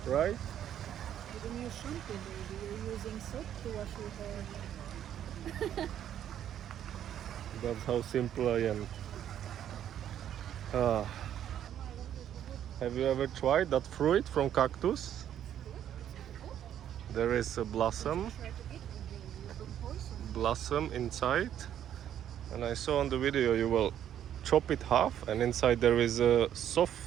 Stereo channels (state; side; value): quieter; left; 10.4 dB